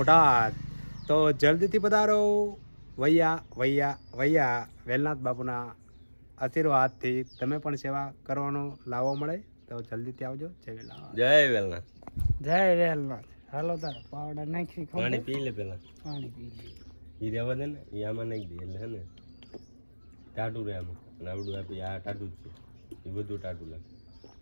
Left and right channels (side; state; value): both; inverted; correlation -1.00